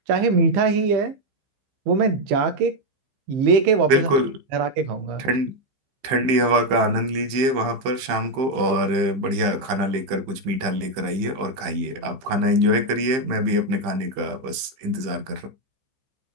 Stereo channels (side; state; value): left; late; 15 ms